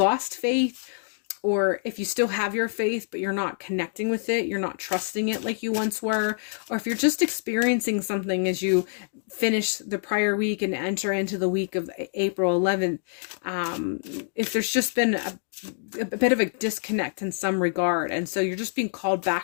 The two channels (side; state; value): right; silent; digital silence